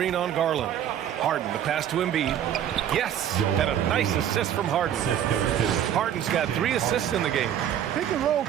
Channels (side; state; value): left; quieter; 10.1 dB